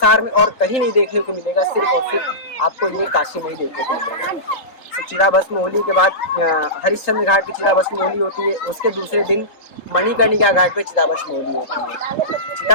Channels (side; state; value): right; late; 3.8 ms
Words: में और कहीं नहीं देखने को मिलेगा, सिर्फ और सिर्फ आपको ये काशी में ही देखने को मिलेगा। तो चिता भस्म होली के बाद हरिश्चंद्र घाट की चिता भस्म होली होती है। उसके दूसरे दिन मणिकर्णिका घाट पे चिता भस्म होली होती है।